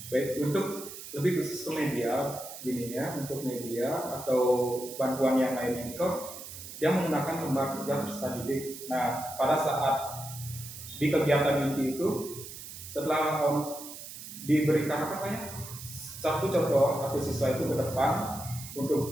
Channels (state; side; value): noise; right; hiss, 12 dB below the sound